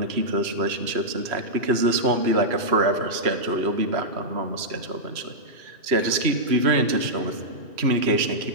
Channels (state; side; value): late; left; 3.0 ms